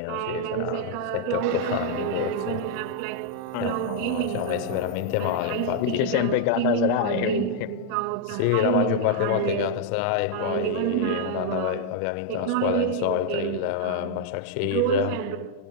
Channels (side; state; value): both; different; correlation -0.01